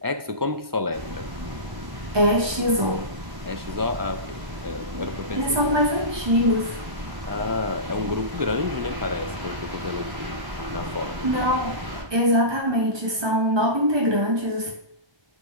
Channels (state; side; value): late; left; 1.2 ms